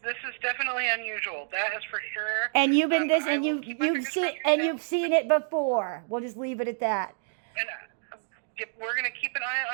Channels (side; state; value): left; silent; digital silence